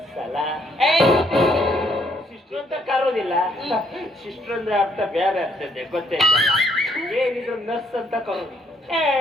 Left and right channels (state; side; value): normal; both; correlation 0.69